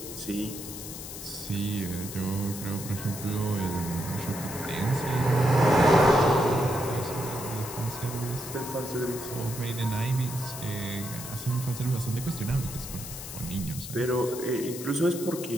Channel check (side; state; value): left; noise; hiss, 10 dB below the sound